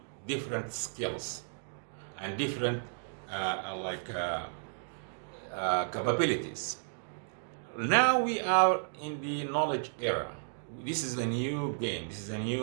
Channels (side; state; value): left; silent; digital silence